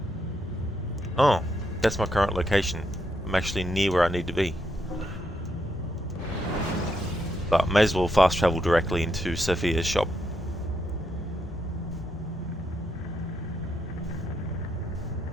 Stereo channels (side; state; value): both; normal; correlation 0.80